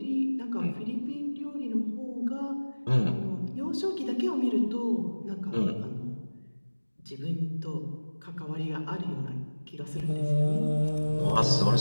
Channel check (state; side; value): inverted; both; correlation -1.00